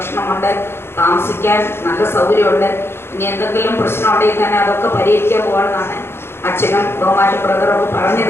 താമസിക്കാൻ നല്ല സൗകര്യമുണ്ട്. ഇനി എന്തെങ്കിലും പ്രശ്നമുണ്ടെങ്കിൽ തന്നെ അതൊക്കെ പരിഹരിക്കാൻ പോകണമെന്നാണ് അച്ഛനും ബഹുമാന ബ്രദറൊക്കെ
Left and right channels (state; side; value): late; right; 0.12 ms